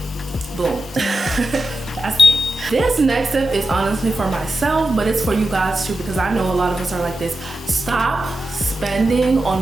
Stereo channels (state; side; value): normal; both; correlation 0.90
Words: Boom. That's it. This next tip is honestly for myself, but it's for you guys too, because I know a lot of us are like this. Stop spending